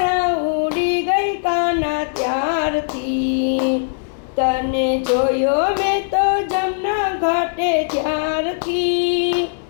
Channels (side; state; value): right; silent; digital silence